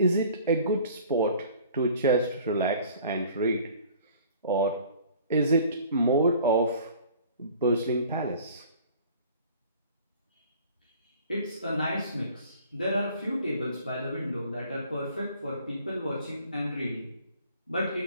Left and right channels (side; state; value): both; inverted; correlation -0.49